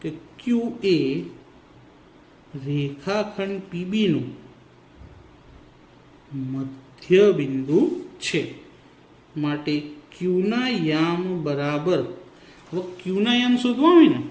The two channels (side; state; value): both; identical; correlation 1.00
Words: કે q એ રેખાખંડ PB નું મધ્ય બિંદુ છે. માટે q ના યામ બરાબર, હવે q ના યામ શોધવા હોય ને